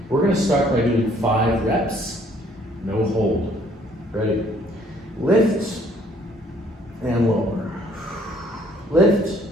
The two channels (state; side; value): normal; both; correlation 0.61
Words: We're going to start by doing 5 reps, no hold. Ready? Lift and lower. Lift